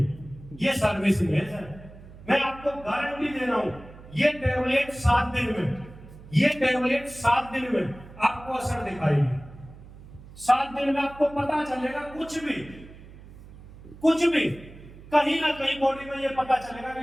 ये सर्विसिंग है सर, मैं आपको गारंटी दे रहा हूं। ये टैबलेट 7 दिन में, ये टैबलेट 7 दिन में आपको असर दिखाएगी। 7 दिन में आपको पता चलेगा, कुछ भी कहीं ना कहीं बॉडी में ये पता चलेगा कि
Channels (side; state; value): right; noise; hum, 18 dB below the sound